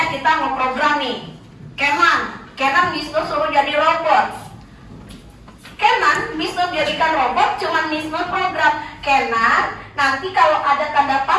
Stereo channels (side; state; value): both; identical; correlation 1.00